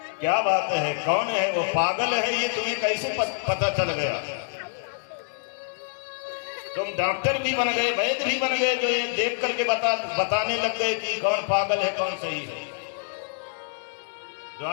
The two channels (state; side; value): silent; right; digital silence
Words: क्या बात है, कौन है वो, पागल है ये, तुम्हें कैसे पता चल गया? तुम डॉक्टर भी बन गए, वैद्य भी बन गए, जो ये देख करके बताने लग गए कि कौन पागल है कौन सही है।